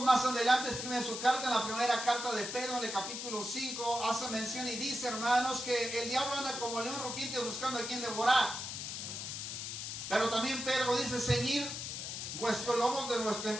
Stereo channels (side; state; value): left; noise; hiss, 6 dB below the sound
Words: más adelante escribe en su carta, en la primera carta de Pedro, en el capítulo 5, hace mención y dice, hermanos, que el diablo anda como león rugiente buscando a quien devorar. Pero también Pedro dice, ceñir vuestros lomos de nuestro